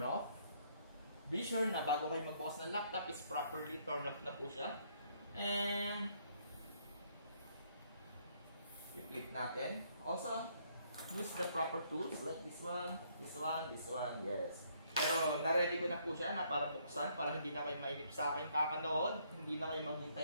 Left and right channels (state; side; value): inverted; both; correlation -0.68